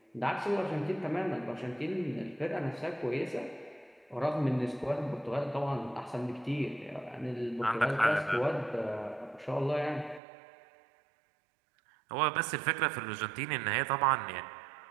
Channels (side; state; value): left; drops out; at 10.2 s